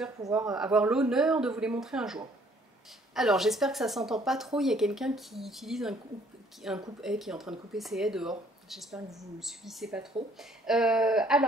pouvoir avoir l'honneur de vous les montrer un jour. Alors j'espère que ça s'entend pas trop, il y a quelqu'un qui utilise un coupe-haie qui est en train de couper ses haies dehors. J'espère que vous ne subissez pas trop.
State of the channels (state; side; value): normal; both; correlation 0.61